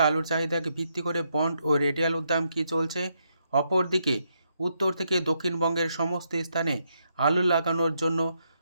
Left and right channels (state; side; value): inverted; both; correlation -0.78